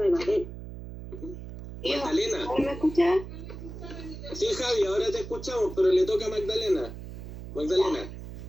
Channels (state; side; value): noise; right; hum, 11 dB below the sound